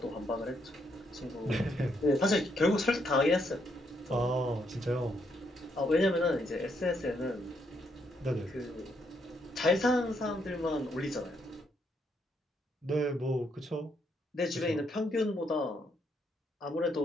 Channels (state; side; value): normal; both; correlation 0.75